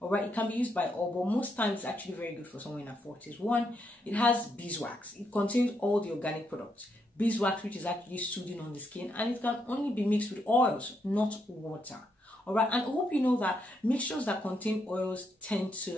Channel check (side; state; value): both; normal; correlation 0.78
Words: All right, it can be used by all, but most times it's actually very good for someone in her 40s. One, it has beeswax. It contains all the organic products. Beeswax, which is actually soothing on the skin, and it can only be mixed with oils, not water. All right, and I hope you know that mixtures that contain oils tend